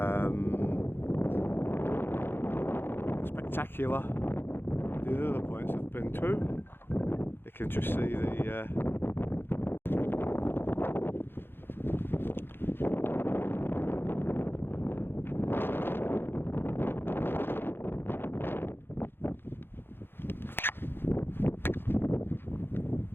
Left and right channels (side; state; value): right; late; 0.10 ms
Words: spectacular than the other points I've been to. You can just see the